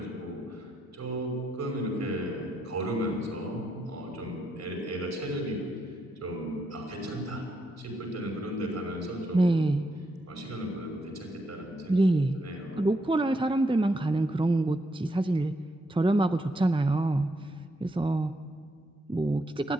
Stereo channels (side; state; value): both; normal; correlation 0.79